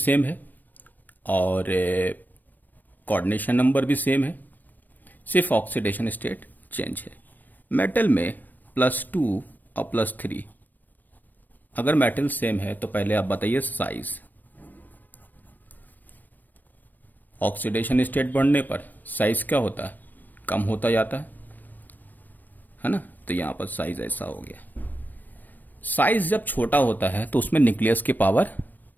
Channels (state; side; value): late; right; 0.088 ms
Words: है और कोऑर्डिनेशन नंबर भी सेम है, सिर्फ ऑक्सीडेशन स्टेट चेंज है। मेटल में +2 और +3, अगर मेटल सेम है तो पहले आप बताइए साइज। ऑक्सीडेशन स्टेट बढ़ने पर साइज क्या होता है, कम होता जाता है ना। तो यहां पर साइज ऐसा हो गया। साइज जब छोटा होता है तो उसमें न्यूक्लियस की पावर